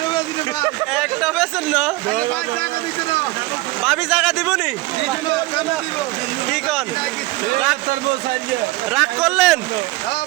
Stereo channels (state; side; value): quieter; left; 19.8 dB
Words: একটা বেচেন না? ভাবি জায়গা দিবনি? কি কন রাগ করলেন?